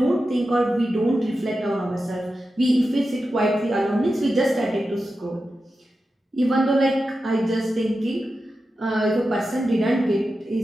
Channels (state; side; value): normal; both; correlation 0.91